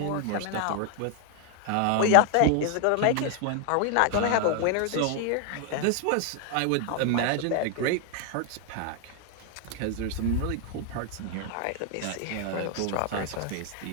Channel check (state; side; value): different; both; correlation 0.00